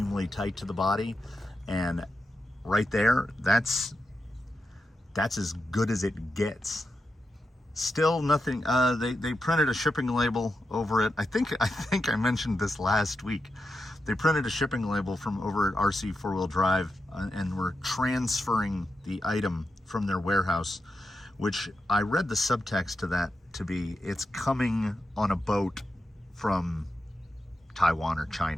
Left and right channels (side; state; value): both; normal; correlation 0.88